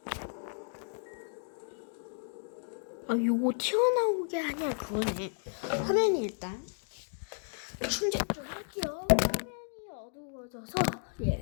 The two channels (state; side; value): silent; right; digital silence